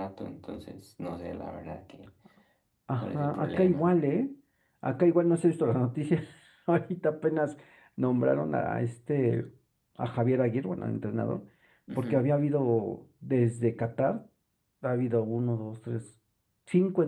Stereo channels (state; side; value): identical; both; correlation 1.00